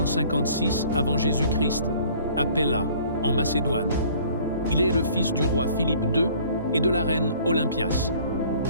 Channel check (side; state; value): both; inverted; correlation -0.53